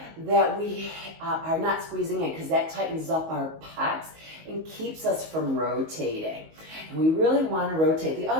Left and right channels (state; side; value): late; left; 19 ms